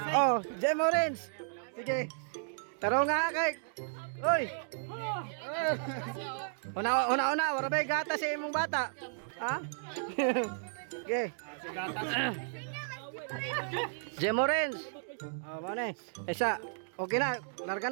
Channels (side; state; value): left; silent; digital silence